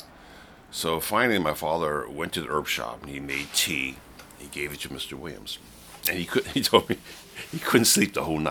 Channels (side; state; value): both; identical; correlation 1.00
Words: So finally, my father went to the herb shop and he made tea. He gave it to Mr. Williams, and he told me he couldn't sleep the whole